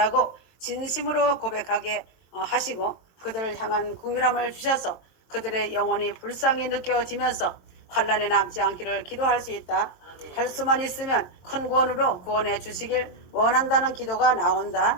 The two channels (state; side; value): late; right; 22 ms